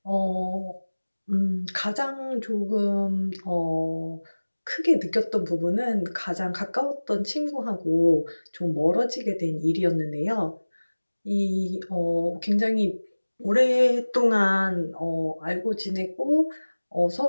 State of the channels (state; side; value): inverted; both; correlation -1.00